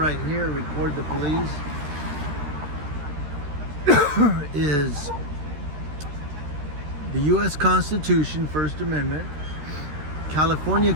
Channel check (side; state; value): left; late; 13 ms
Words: here, record the police, is the U.S. Constitution, First Amendment, California